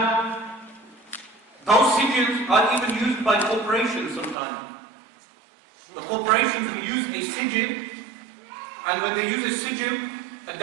those sigils are even used by corporations sometimes. The corporations will use a sigil, and when they use a sigil, a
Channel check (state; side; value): drops out; left; at 4.4 s